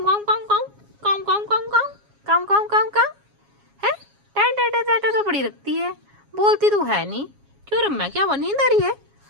कम कम कम कम कम कम कम कम कम कम है। टैट तो बड़ी रखती है, बोलती तो है नहीं। क्यों रम्या, क्या वो नींद आ रही है?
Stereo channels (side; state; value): left; late; 7.2 ms